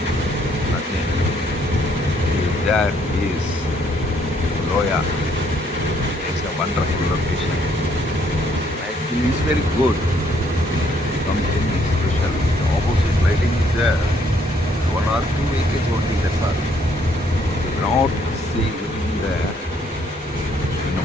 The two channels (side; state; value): both; normal; correlation 0.68